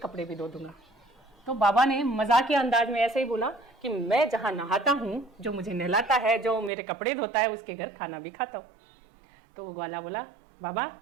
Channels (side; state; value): left; drops out; at 6.7 s